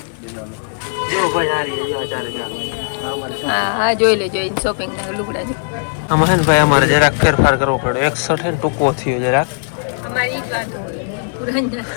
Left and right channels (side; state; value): right; silent; digital silence